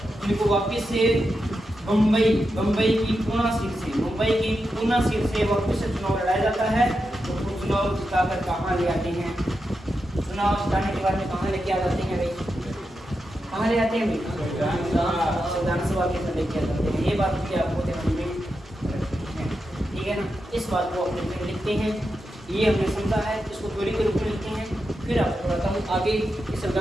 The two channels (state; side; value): normal; both; correlation 0.88